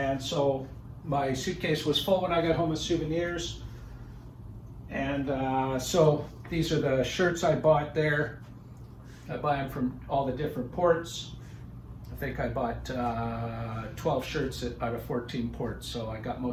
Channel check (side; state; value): both; identical; correlation 1.00